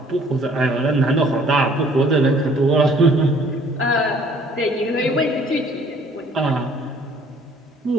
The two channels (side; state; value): both; normal; correlation 0.58